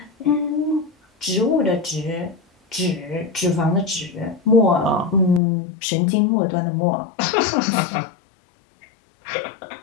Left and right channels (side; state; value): right; drops out; at 5.4 s